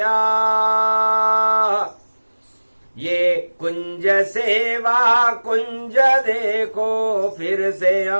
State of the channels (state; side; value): inverted; both; correlation -1.00